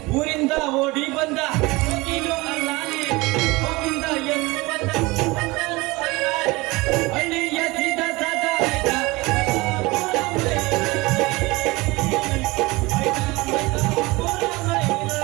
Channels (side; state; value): left; quieter; 22.6 dB